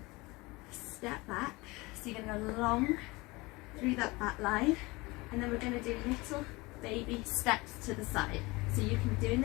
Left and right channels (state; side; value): quieter; right; 23.1 dB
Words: Step back. So you're going to go long through that back line. And then we're going to do little baby steps to the side. So you can be doing